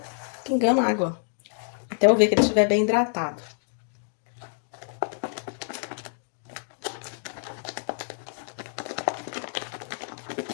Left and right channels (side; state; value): right; silent; digital silence